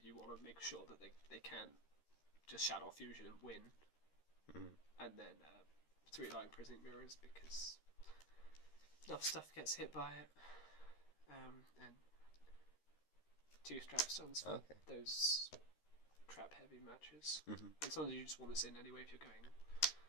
you want to make sure that they can just Shadow Fusion and win. And then 3 Lying Prison Mirrors, because enough stuff gets hit by it. And 2 Strap Stuns for those trap heavy matches. And sometimes you just want this in anyway if you're going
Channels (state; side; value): late; right; 13 ms